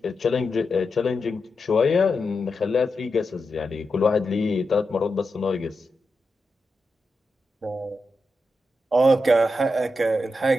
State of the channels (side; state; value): both; normal; correlation 0.88